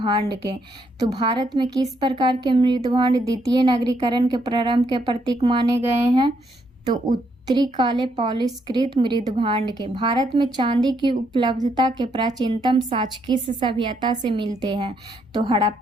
के। तो भारत में किस प्रकार के मृद भांड द्वितीय नगरीकरण के प्रारंभ के प्रतीक माने गए हैं? तो उत्तरी काले पॉलिशकृत मृद भांड के। भारत में चांदी की उपलब्धता के प्राचीनतम साक्ष्य किस सभ्यता से मिलते हैं? तो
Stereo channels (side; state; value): both; normal; correlation 0.74